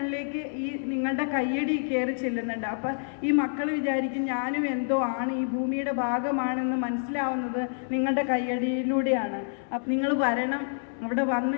ഈ നിങ്ങളുടെ കയ്യടി കയറി ചെല്ലുന്നുണ്ട്. അപ്പം ഈ മക്കൾ വിചാരിക്കും ഞാനും എന്തോ ആണ്, ഈ ഭൂമിയുടെ ഭാഗമാണെന്ന് മനസ്സിലാവുന്നത് നിങ്ങളുടെ കയ്യടിയിലൂടെയാണ്. അപ്പം നിങ്ങൾ വരണം, അവിടെ വന്ന്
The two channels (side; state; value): right; silent; digital silence